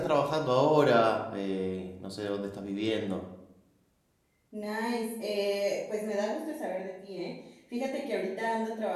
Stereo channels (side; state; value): both; identical; correlation 1.00